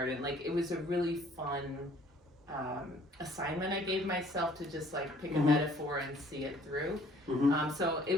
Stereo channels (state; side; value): normal; both; correlation 0.58